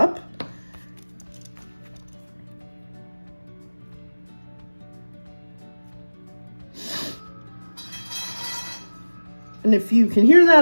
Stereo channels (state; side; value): inverted; both; correlation -1.00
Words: And if you can hear